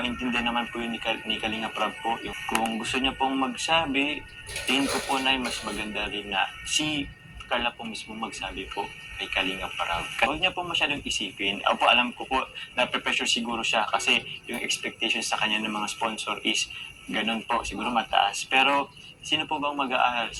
naman po yun ni Kalinga Prab po. Kung gusto niya pong magsabi, tingin ko po na mas maganda rin na si Carla po mismo magsabi po kay Kalinga Prab. Huwag niya po masyadong isipin. Ako po, alam ko po, na-pressure siguro siya kasi yung expectations sa kanya ng mga sponsor is ganun po, siguro mataas. Pero sino po bang mag-aaral?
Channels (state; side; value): identical; both; correlation 1.00